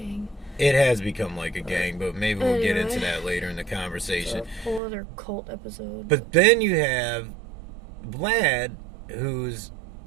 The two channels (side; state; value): left; drops out; at 4.8 s